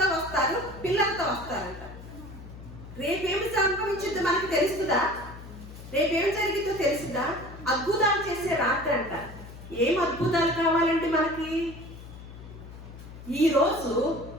వస్తారు, పిల్లలతో వస్తారంట. రేపేమి సంభవించిందో మనకు తెలుస్తుందా? రేపేం జరిగిందో తెలుస్తుందా? అద్భుతాలు చేసే రాత్రి అంట. ఏం అద్భుతాలు కావాలంటే మనకి? ఈరోజు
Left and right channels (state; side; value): noise; left; hum, 15 dB below the sound